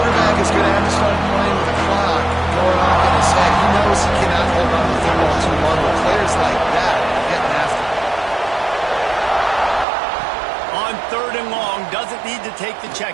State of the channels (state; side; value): drops out; left; at 9.9 s